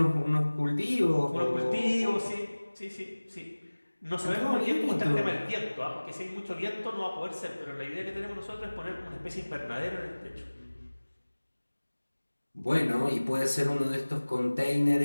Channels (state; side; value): inverted; both; correlation -1.00